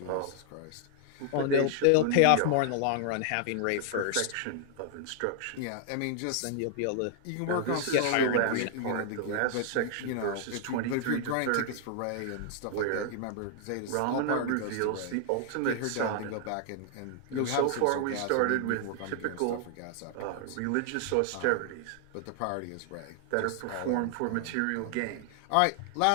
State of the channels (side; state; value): both; different; correlation 0.00